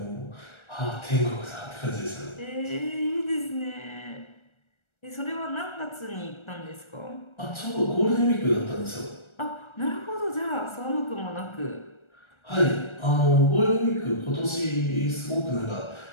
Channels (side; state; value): right; late; 1.3 ms